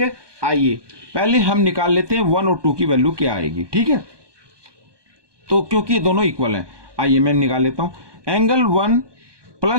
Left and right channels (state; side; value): late; left; 1.2 ms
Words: आइए पहले हम निकाल लेते हैं 1 और 2 की वैल्यू क्या आएगी। ठीक है, तो क्योंकि ये दोनों इक्वल हैं, आइए मैं निकाल लेता हूँ। एंगल 1